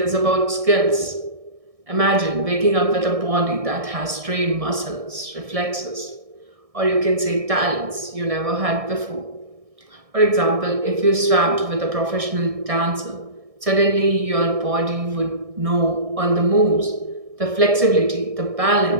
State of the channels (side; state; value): left; late; 1.6 ms